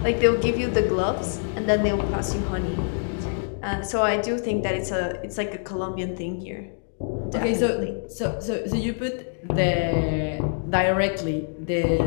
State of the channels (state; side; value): silent; right; digital silence